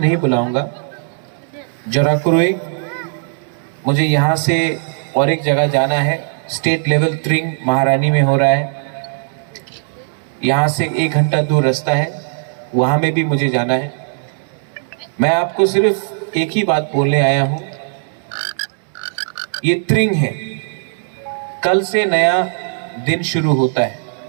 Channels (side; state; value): left; silent; digital silence